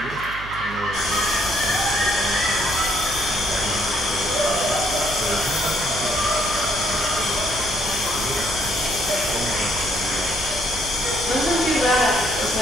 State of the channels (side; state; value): right; noise; hum, 13 dB below the sound